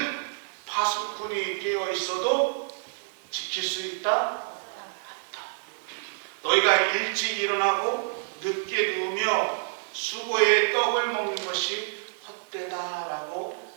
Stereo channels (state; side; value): silent; left; digital silence